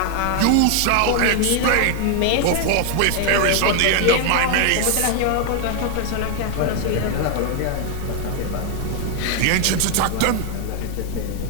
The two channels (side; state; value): both; different; correlation 0.00